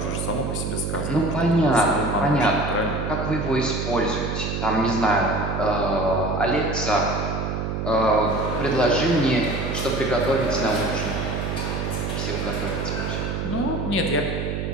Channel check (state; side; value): noise; right; hum, 2 dB below the sound